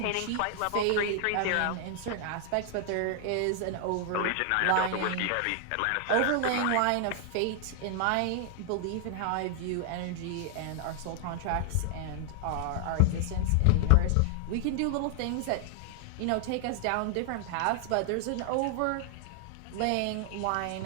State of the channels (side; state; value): both; different; correlation 0.00